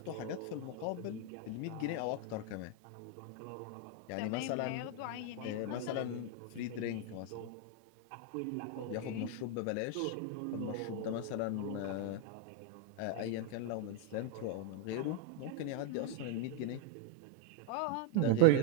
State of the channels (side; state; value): both; different; correlation 0.00